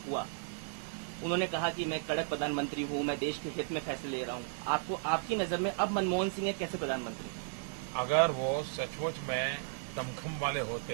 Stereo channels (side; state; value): left; silent; digital silence